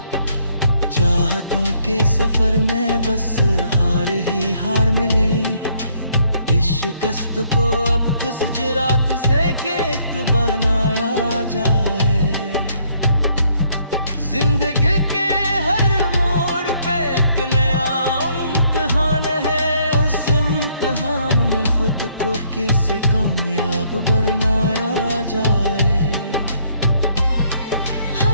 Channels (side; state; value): both; inverted; correlation -0.67